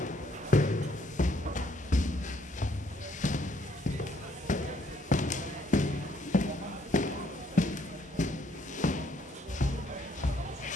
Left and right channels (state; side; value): normal; both; correlation 0.68